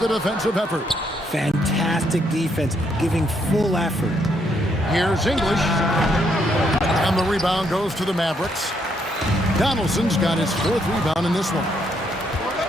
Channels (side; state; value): both; normal; correlation 0.74